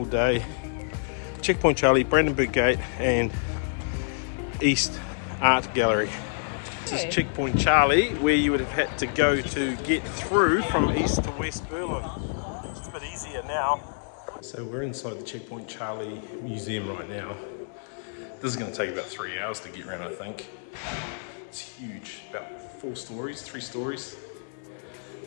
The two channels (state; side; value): silent; right; digital silence